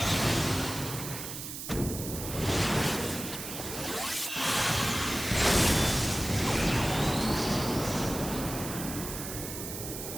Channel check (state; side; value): noise; right; hiss, 8 dB below the sound